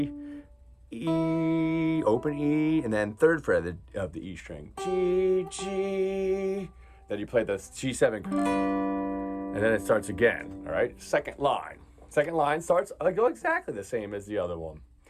E, open E, and then 3rd fret of the E string, G, G. Then you play the G7, and then it starts again, all right? Second line starts exactly the same as the other one,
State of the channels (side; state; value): both; identical; correlation 1.00